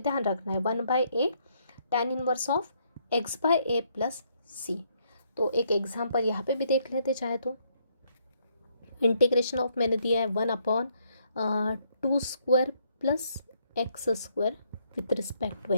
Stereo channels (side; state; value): both; inverted; correlation -0.71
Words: रखना है 1/a tan inverse of x by a plus सी। तो एक एग्जाम्पल यहाँ पे भी देख लेते चाहे तो। इंटीग्रेशन ऑफ मैंने दिया है 1/2 square plus x square with respect to